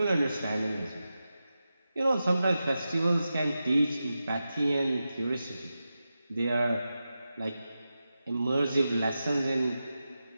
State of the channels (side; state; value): both; inverted; correlation -0.91